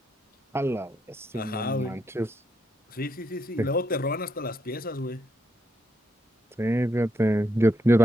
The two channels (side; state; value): both; normal; correlation 0.78